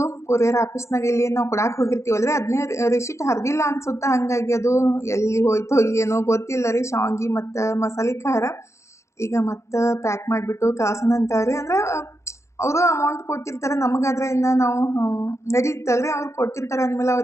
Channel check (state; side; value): late; right; 0.14 ms